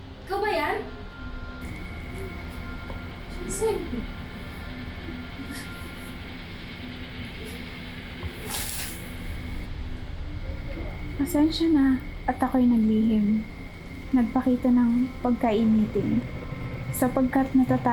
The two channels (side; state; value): both; identical; correlation 1.00